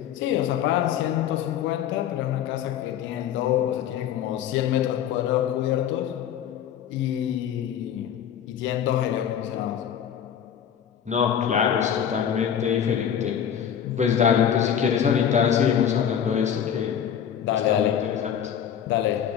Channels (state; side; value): quieter; right; 9.1 dB